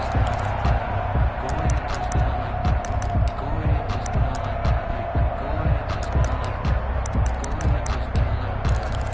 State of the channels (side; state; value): both; identical; correlation 1.00